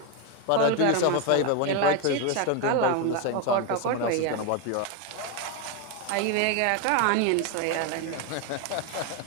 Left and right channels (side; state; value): both; different; correlation 0.02